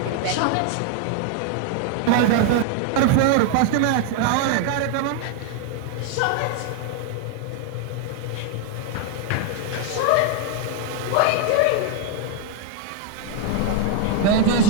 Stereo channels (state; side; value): different; both; correlation 0.00